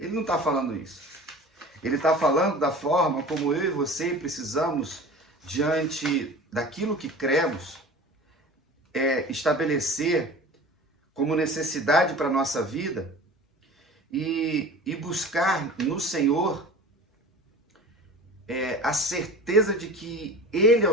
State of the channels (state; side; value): normal; both; correlation 0.39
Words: não está falando isso. Ele está falando da forma como eu e você precisamos, diante daquilo que cremos, estabelecer como necessidade para a nossa vida e buscar no Senhor a certeza de que Ele é